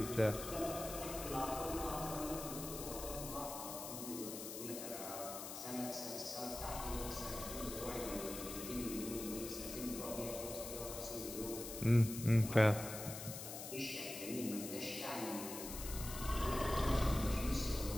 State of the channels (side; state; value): left; noise; hiss, 8 dB below the sound